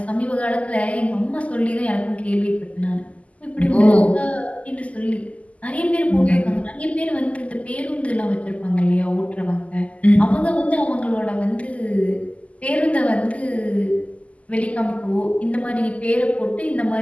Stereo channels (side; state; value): right; late; 0.068 ms